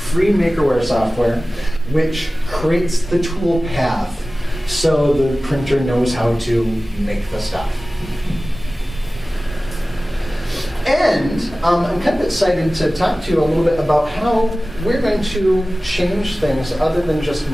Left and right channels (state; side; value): normal; both; correlation 0.97